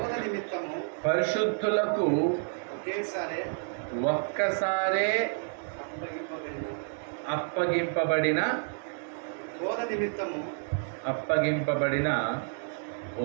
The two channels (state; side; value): silent; left; 58 dB below the other